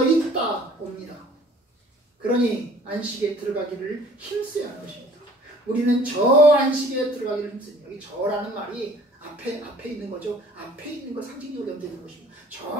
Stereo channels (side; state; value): both; normal; correlation 0.52